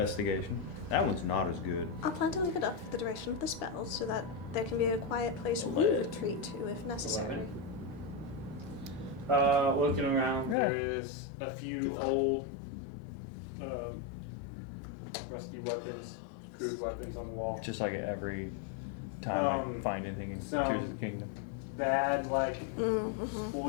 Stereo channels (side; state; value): right; drops out; at 10.6 s